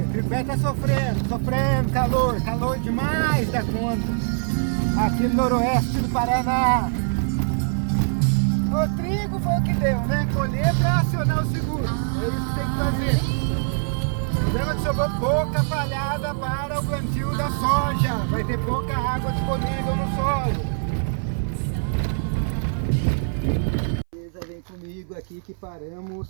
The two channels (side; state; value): left; silent; 60 dB below the other